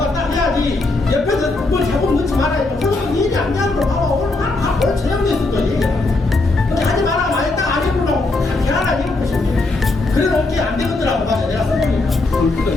딱 해야지. 옆에서 뭘 자꾸 넣지 말아요. 그러면 얘기 안 되는 거 봐봐. 오늘 바로 저녁에서도 얘기해. 근데 하지 마라. 많이 딱안 해보려고 하나 이런 것인데. 그래 놓기 안 되거더라고. 맞아. 내가 써보니까. 골프가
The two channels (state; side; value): quieter; right; 3.2 dB